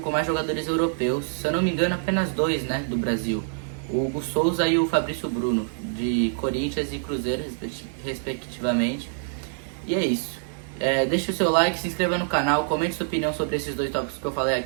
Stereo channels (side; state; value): left; silent; digital silence